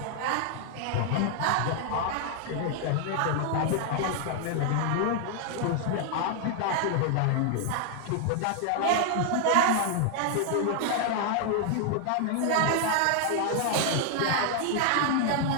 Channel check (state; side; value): different; both; correlation 0.00